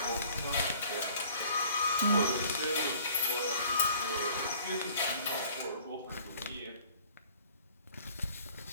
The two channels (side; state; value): both; inverted; correlation -0.53